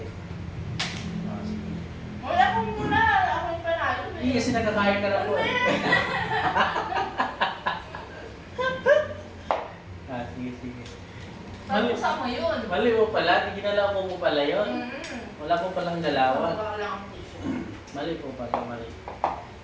Sige. Wala ko muna. Ako yung panalo. Hindi kasi nakakain ka na po. Sige, sige. Pag-usa mo yun. Mali mo pala. Ginalaw mo pala yun. Wala po palang dalawan. Wala lang ang tissue. Mali po pala, mali.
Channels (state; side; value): identical; both; correlation 1.00